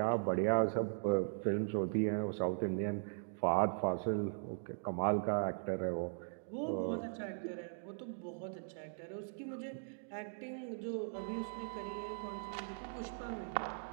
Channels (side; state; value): left; silent; digital silence